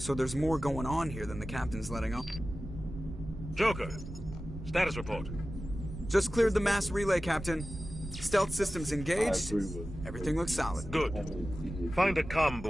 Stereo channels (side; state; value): right; noise; rumble, 11 dB below the sound